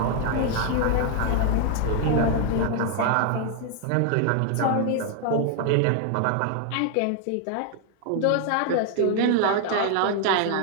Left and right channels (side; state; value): both; different; correlation 0.00